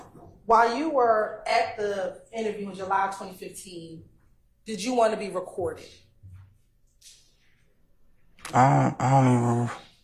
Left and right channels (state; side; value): identical; both; correlation 1.00